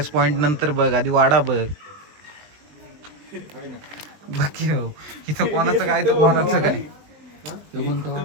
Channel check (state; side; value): late; left; 20 ms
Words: पॉइंट नंतर बघ आधी वाडा बघ. बाकी हो इथं कोणाचं काय तर कोणाचं काय.